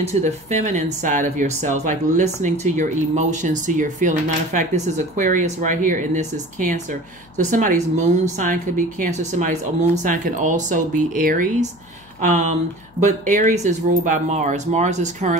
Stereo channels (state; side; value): noise; left; hum, 28 dB below the sound